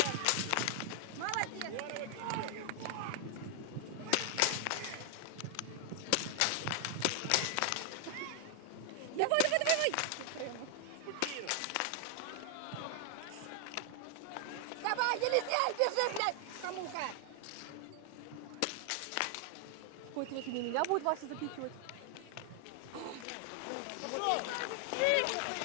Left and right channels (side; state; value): both; different; correlation 0.00